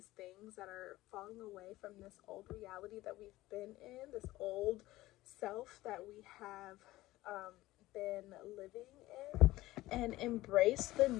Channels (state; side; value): quieter; right; 17.3 dB